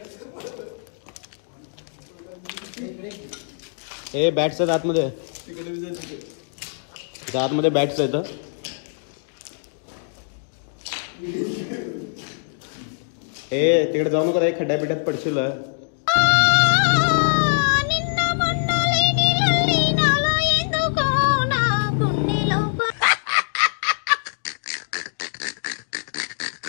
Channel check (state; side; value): silent; right; digital silence